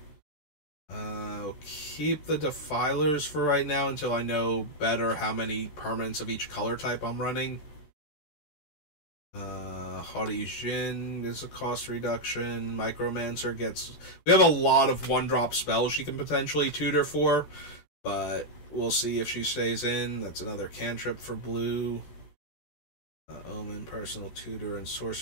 I'll keep the Defilers for right now until I know better how many permanents of each color type I'm running. Haughty Jin is a cost reduction. Micromancer gets... We have a lot of one-drop spells she can potentially tutor for, but we'll see if she stays in. That's another cantrip for blue. Omen, Personal Tutor, and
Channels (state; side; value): late; right; 13 ms